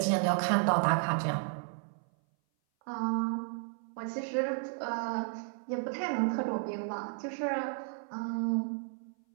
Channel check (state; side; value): silent; left; 56 dB below the other